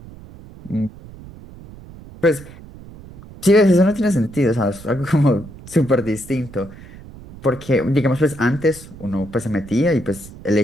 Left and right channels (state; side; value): noise; right; rumble, 18 dB below the sound